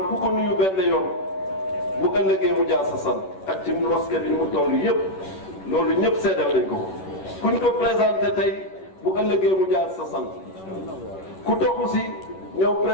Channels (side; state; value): right; late; 11 ms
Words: ku ko nuyu benn yoon bu ëllëgee mu jaar sa sant ak ci mosquée bi mu toll yëpp loolu ñëpp seedal nañ ko kuñ ko présenté tey bu ëllëgee mu jaar sa sant ku toxu si ñëw